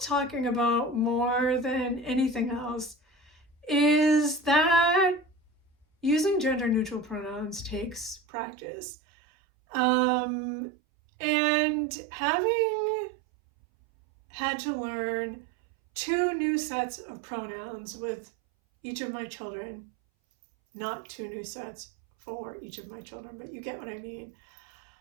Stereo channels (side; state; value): left; drops out; at 8.2 s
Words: about more than anything else is that using gender neutral pronouns takes practice. And having had to learn two new sets of pronouns with each of my children, not two new sets for each of my children, but you get what I mean.